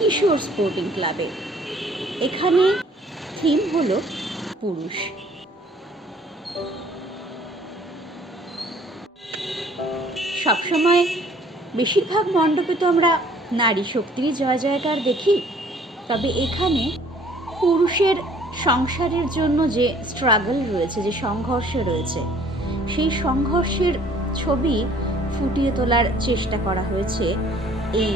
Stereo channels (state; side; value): normal; both; correlation 0.57